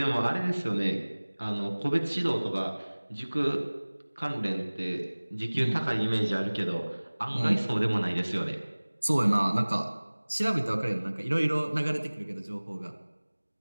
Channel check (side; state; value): both; inverted; correlation -1.00